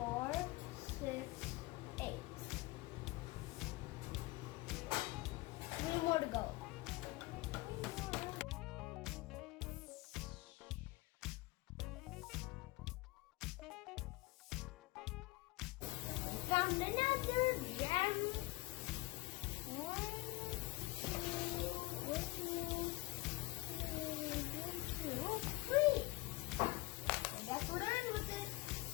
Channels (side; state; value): right; quieter; 21.1 dB